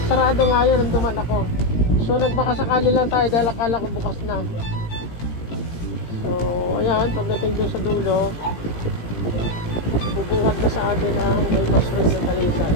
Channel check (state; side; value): late; right; 18 ms